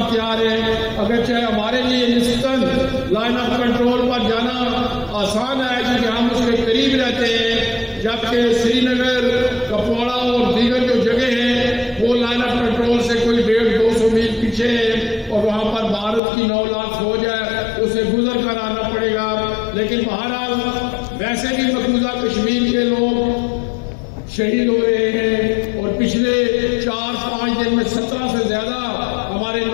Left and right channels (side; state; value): right; drops out; at 16.2 s